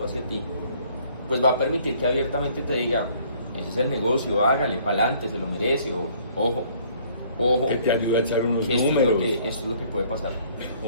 hacia ti, pues va a permitir que abiertamente te diga, ese es el negocio, hágale, pa'lante, se lo merece, o ojo. Que te ayude a echar unos que números. Esto es lo que puede pasar.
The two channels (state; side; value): inverted; both; correlation -0.59